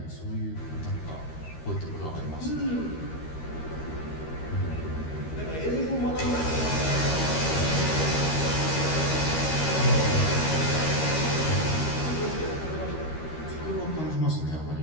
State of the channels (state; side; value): late; right; 13 ms